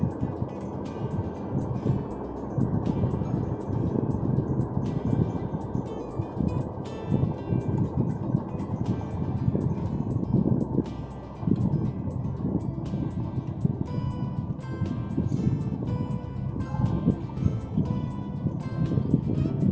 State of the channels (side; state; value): both; identical; correlation 1.00